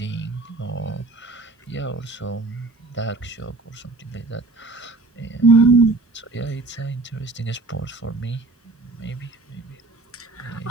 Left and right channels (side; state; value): left; quieter; 3.4 dB